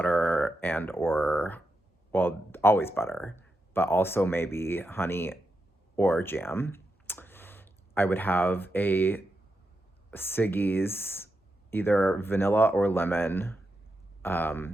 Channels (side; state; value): both; normal; correlation 0.86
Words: well, always butter, but also maybe honey or jam. I would have a Siggy's, either vanilla or lemon.